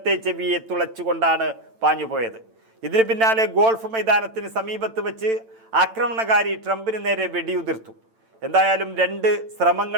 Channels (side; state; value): left; late; 8.9 ms